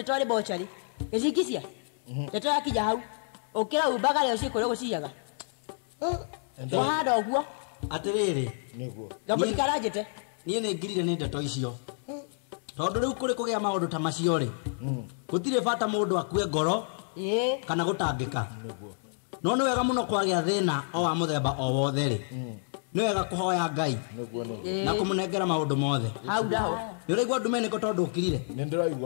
rä mocarä gä cingicia ndeto yakinya hau å kä raumbaga rä o ciä kå rä gå ciaga wahanda å guo atä rä rä ngambå ndikaranjä te niä nä ngirire nä ndeto icio tondå rä u kå rä kå gä a maå ndå ta macio rä gå tirä bata må ndå akue ngoro kana gå tangä ka no nä wega må no kwagä a thä na o wa må themba o wothe rä nä wega kå hoya Ngai na kå må nengera maå ndå mothe hau ndaho nä å raigua ndumenä tondå å kirire nä ndä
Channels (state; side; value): silent; right; digital silence